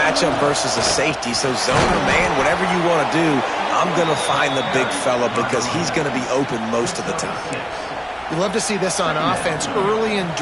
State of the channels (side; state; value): both; identical; correlation 1.00